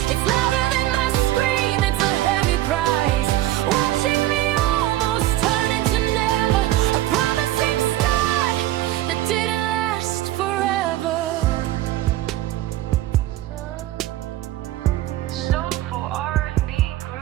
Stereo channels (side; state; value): left; quieter; 14.9 dB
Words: It's louder than my scream, it's a heavy price. Watching me almost turn into never, a promising start that didn't last forever. Soulful R&B